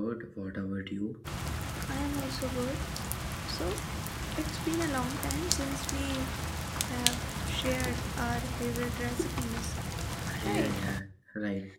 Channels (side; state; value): both; identical; correlation 1.00